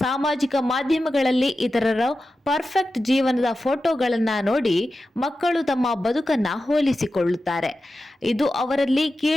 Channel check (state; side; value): normal; both; correlation 0.92